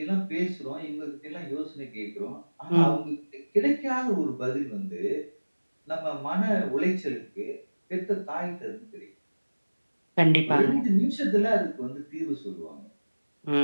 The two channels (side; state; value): both; inverted; correlation -1.00